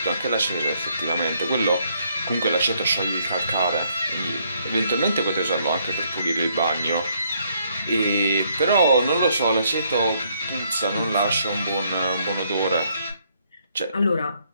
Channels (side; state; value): both; inverted; correlation -0.70